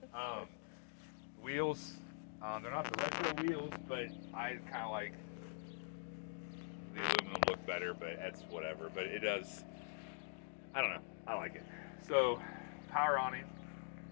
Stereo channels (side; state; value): right; silent; digital silence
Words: said. Wheels, they're not the retro wheels, but I kind of like the aluminum look better, but that's whatever. But it does, I don't know, I like it. So, power awning.